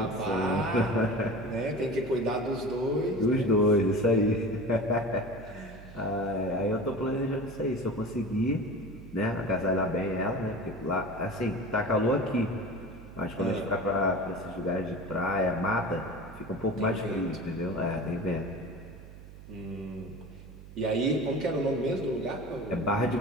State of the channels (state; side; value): noise; right; hum, 16 dB below the sound